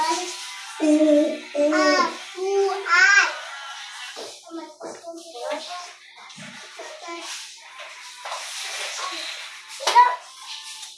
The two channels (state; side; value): identical; both; correlation 1.00